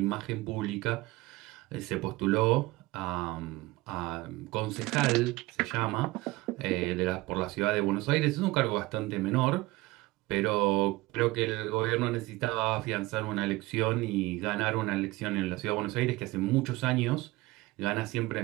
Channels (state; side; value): quieter; left; 20.4 dB